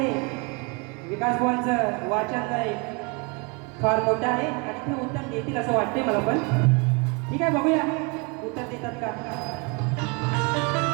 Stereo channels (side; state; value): left; quieter; 31.4 dB